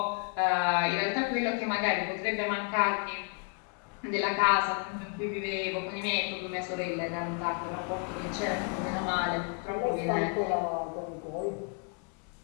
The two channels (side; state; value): right; quieter; 37.8 dB